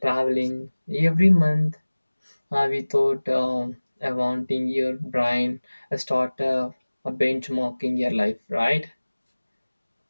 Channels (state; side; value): inverted; both; correlation -1.00